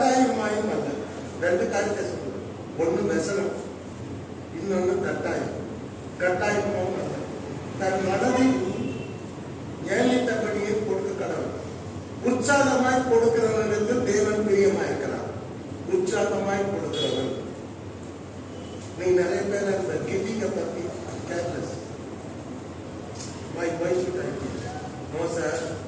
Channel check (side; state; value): both; identical; correlation 1.00